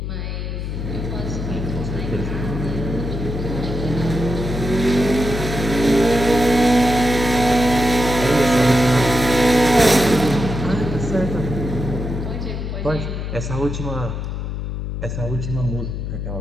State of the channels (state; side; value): noise; left; hum, 4 dB below the sound